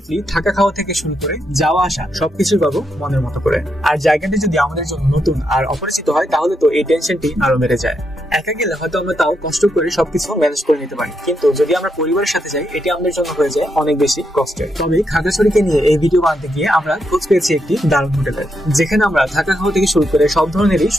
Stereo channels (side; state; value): both; normal; correlation 0.81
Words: থাকা খাওয়া থেকে শুরু করে যাওয়া আসা সবকিছু পাবো মনের মতো করে। আর জায়গাটি যদি আমাদের জন্য নতুন আর অপরিচিত হয় তাহলে তো এই টেনশনটি আরো বেড়ে যায়। একা গেলে হয়তো আমরা তাও কষ্ট করে সবকিছু ম্যানেজ করে নিতে পারি, কিন্তু যদি আমরা পরিবারের সাথে যাই এটি আমাদের জন্য হয়ে যায় অনেক বেশি কষ্টের। তবে খাগড়াছড়িকে নিয়ে এই ভিডিও বানাতে গিয়ে আমরা খোঁজ পেয়েছি একটি দারুণ হোটেলের, যেখানে আমরা থাকা খাওয়া থেকে শুরু করে সব ধরনেরই